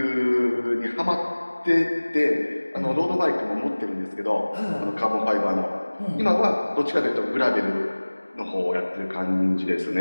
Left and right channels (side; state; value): both; inverted; correlation -1.00